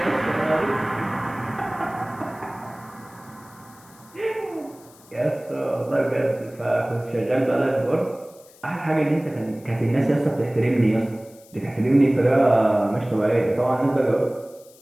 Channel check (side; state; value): left; noise; hiss, 26 dB below the sound